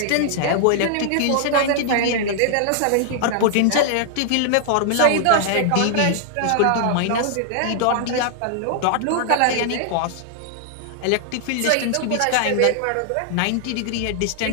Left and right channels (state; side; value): different; both; correlation -0.01